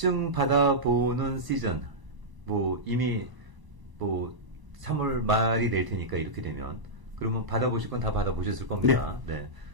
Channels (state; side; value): late; left; 1.0 ms